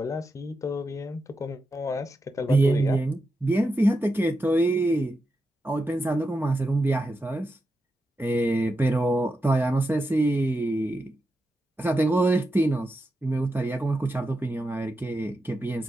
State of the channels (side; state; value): both; normal; correlation 0.88